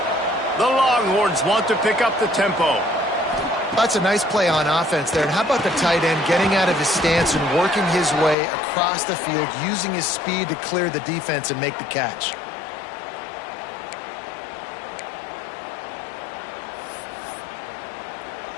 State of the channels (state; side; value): drops out; right; at 8.3 s